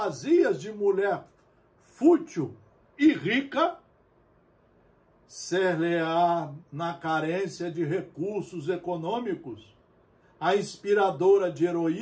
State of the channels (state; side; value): identical; both; correlation 1.00